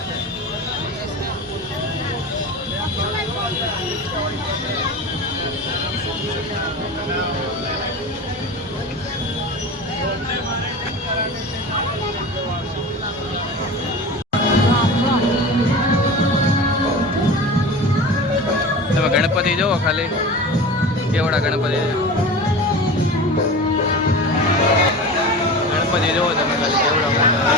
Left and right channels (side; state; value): both; normal; correlation 0.32